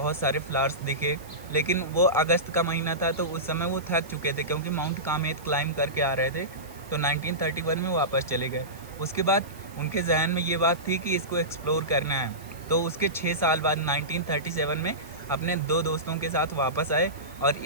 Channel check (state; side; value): noise; right; hiss, 22 dB below the sound